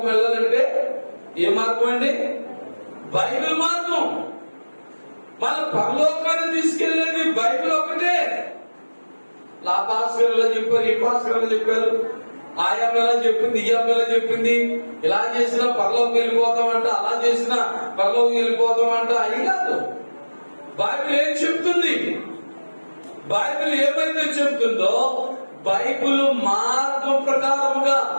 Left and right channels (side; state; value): both; inverted; correlation -1.00